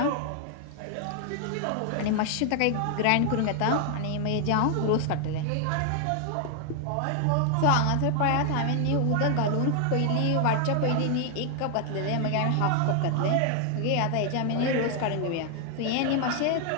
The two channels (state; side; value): different; both; correlation 0.00